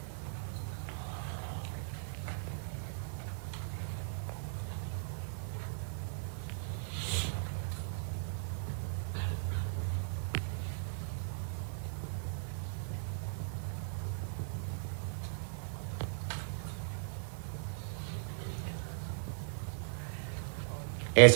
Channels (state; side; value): silent; left; digital silence